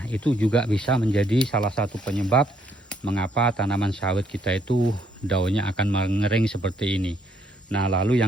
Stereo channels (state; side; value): normal; both; correlation 0.70